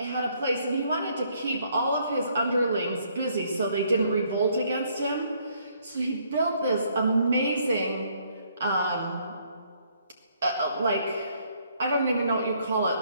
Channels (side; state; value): both; inverted; correlation -0.67